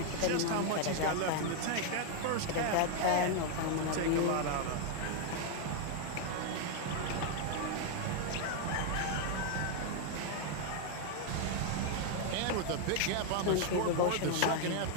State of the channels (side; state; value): both; different; correlation 0.00